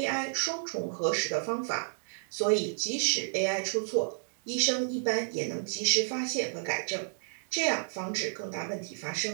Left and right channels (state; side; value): silent; left; 57 dB below the other